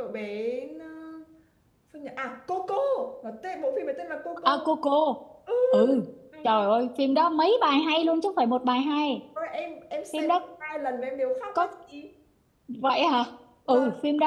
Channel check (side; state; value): both; identical; correlation 1.00